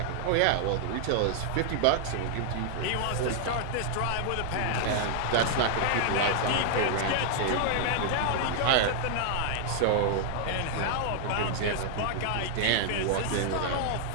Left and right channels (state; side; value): different; both; correlation 0.00